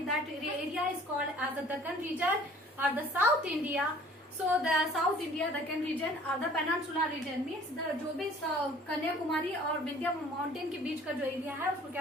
that area is called as the Deccan region or the South India. So the South India, Deccan region or the Peninsula region means the जो भी कन्याकुमारी और Vindhya mountain के बीच का जो area है उसको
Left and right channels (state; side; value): normal; both; correlation 0.52